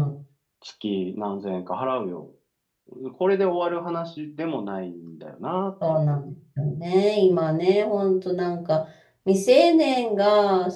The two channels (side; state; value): both; identical; correlation 1.00